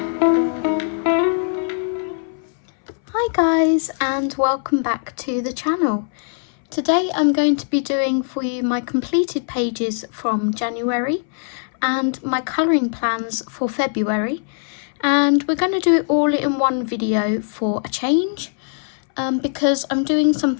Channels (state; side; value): silent; right; 64 dB below the other